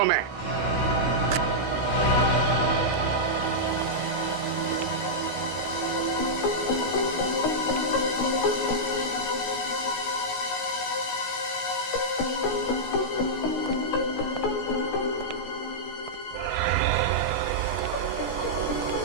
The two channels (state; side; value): late; right; 16 ms